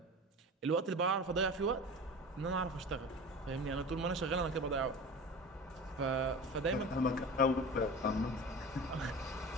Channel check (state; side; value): normal; both; correlation 0.33